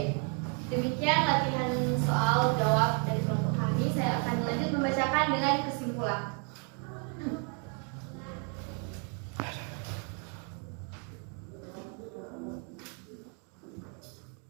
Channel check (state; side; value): quieter; left; 38.9 dB